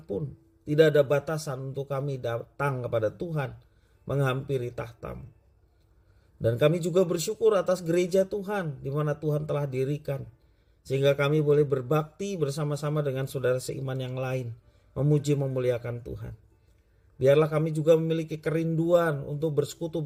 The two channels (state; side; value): identical; both; correlation 1.00